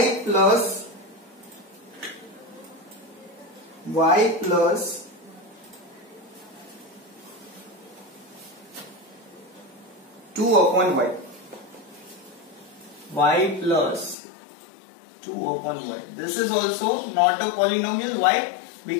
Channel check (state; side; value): drops out; right; at 14.2 s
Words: plus 2 upon y. Y plus 2 upon y. This is also not a polynomial. Why?